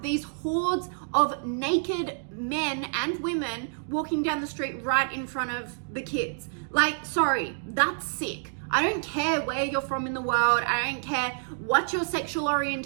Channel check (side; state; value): left; silent; digital silence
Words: these hordes of naked men and women walking down the street right in front of the kids. Like, sorry, that's sick. I don't care where you're from in the world. I don't care what your sexual